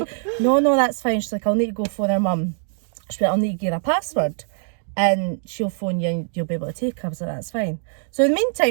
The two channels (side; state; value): left; silent; digital silence